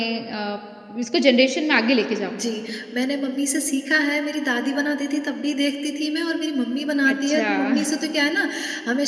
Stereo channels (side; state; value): both; identical; correlation 1.00